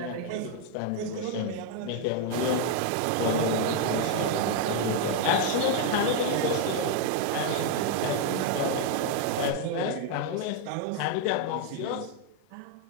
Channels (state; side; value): different; both; correlation 0.00